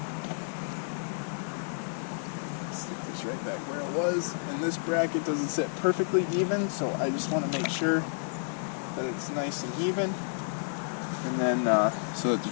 Stick this right back where it was. And this bracket doesn't sit perfectly even, so I just want to make sure that it's nice and even. And then so that the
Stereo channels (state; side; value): silent; right; 57 dB below the other